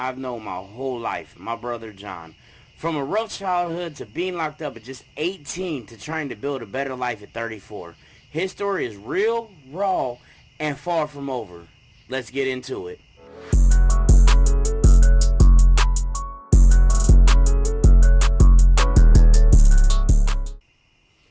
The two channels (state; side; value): identical; both; correlation 1.00